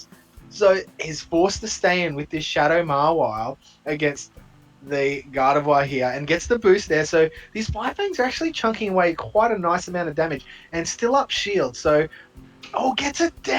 So he's forced to stay in with this Shadow Mawile against the Gardevoir here and gets the boost there. So these Fire Fangs are actually chunking away quite a nice amount of damage and still up shield. So, gets it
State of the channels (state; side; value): identical; both; correlation 1.00